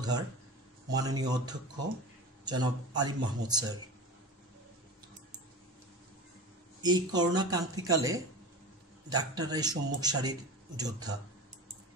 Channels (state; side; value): normal; both; correlation 0.31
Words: মাননীয় অধ্যক্ষ জনাব আলিম মাহমুদ স্যার। এই করোনা ক্রান্তিকালে ডাক্তাররাই সম্মুখ সারির যোদ্ধা।